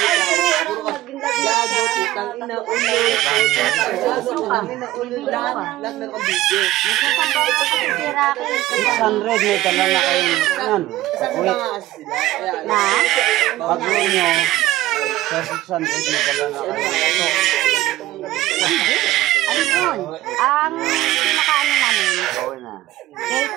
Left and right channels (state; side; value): quieter; left; 15.7 dB